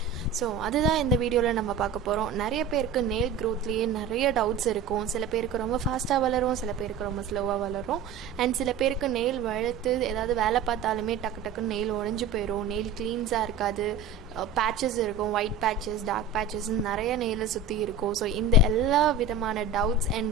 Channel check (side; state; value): left; quieter; 5.2 dB